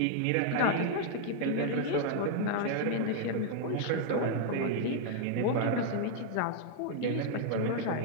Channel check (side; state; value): both; different; correlation -0.01